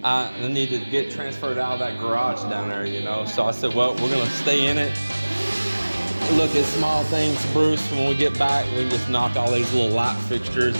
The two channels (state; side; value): inverted; both; correlation -1.00